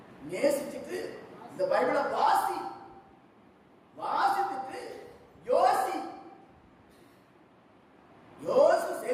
நேசிச்சுட்டு இந்த பைபிளை வாசி, வாசித்துட்டு யோசி, யோசி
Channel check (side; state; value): both; identical; correlation 1.00